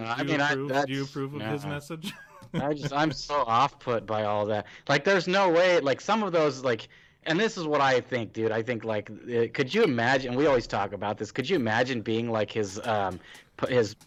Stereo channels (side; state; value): both; identical; correlation 1.00